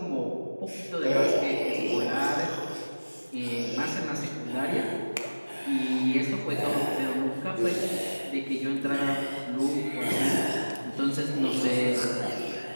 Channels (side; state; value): both; inverted; correlation -1.00